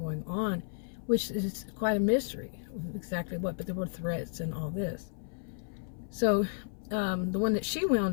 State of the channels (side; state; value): right; silent; 56 dB below the other